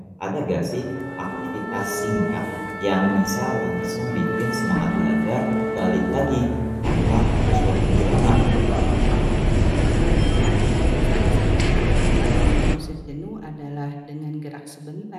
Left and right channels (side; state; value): both; identical; correlation 1.00